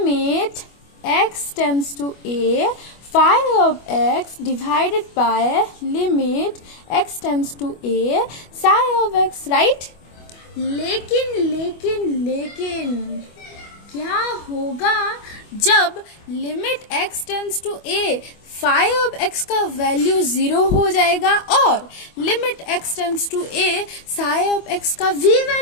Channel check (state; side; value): late; right; 25 ms